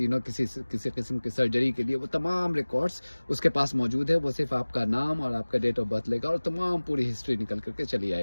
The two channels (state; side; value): inverted; both; correlation -1.00